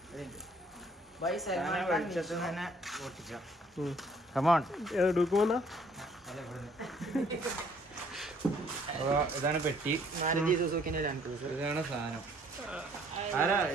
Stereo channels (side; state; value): both; normal; correlation 0.61